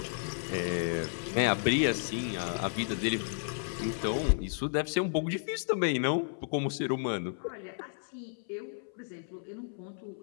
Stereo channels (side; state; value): right; silent; 56 dB below the other